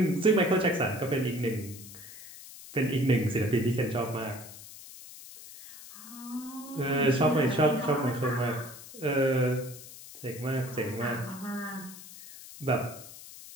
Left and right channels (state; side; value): noise; left; hiss, 16 dB below the sound